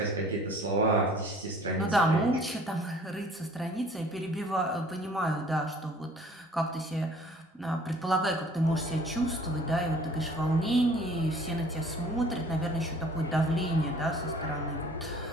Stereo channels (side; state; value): both; normal; correlation 0.52